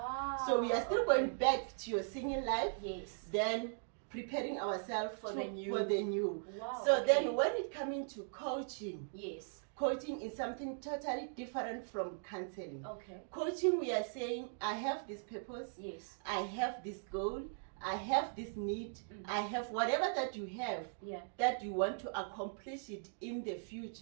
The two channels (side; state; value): left; silent; digital silence